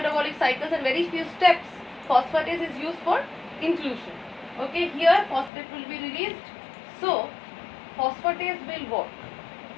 cycles and very few steps, phosphatase is used for inclusion. Okay, here phosphate will be released. So phosphatase will work.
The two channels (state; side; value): drops out; right; at 5.5 s